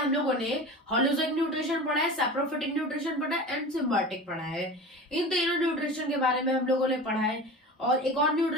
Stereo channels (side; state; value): both; normal; correlation 0.33